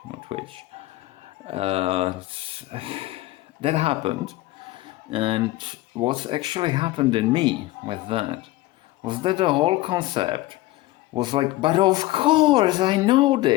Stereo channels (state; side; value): quieter; right; 17.8 dB